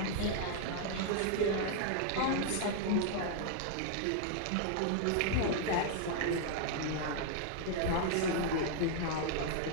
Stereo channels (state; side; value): different; both; correlation 0.00